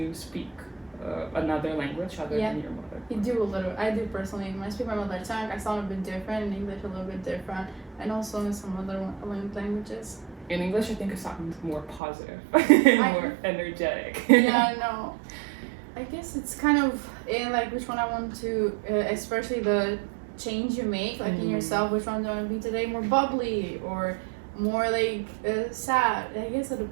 speak another language other than your mother? You do a little. I do personally. When I speak my mother tongue, I sound a bit different. In English, a little bit different. And also in some other languages. In English, I think it sounds more positive, more energetic. Yeah, I know. I guess it's kind of in like which one I want to, especially the change you make, like in yourself, which one do I want to be today? More bubbly or more like sad? I guess it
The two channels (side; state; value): left; drops out; at 12.0 s